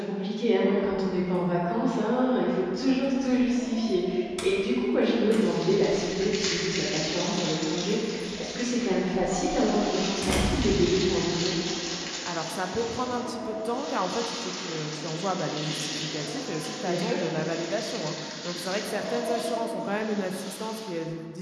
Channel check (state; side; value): identical; both; correlation 1.00